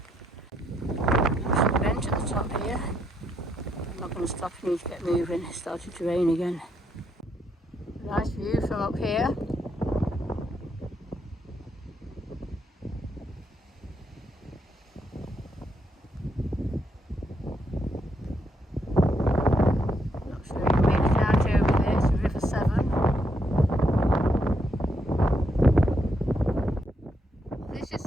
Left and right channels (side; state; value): both; normal; correlation 0.77